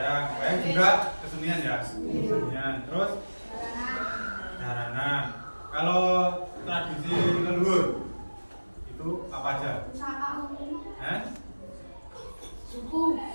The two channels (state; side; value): inverted; both; correlation -1.00